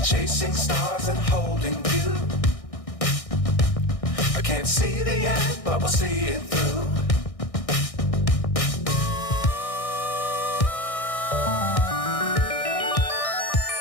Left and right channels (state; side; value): late; right; 1.6 ms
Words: Chasing stars and holding you. I can't see the end, but we'll see it through.